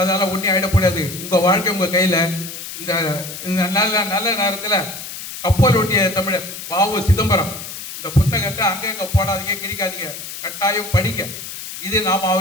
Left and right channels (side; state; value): left; noise; hiss, 10 dB below the sound